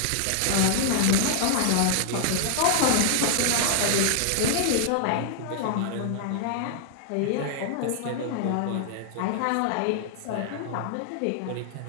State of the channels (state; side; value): different; both; correlation -0.01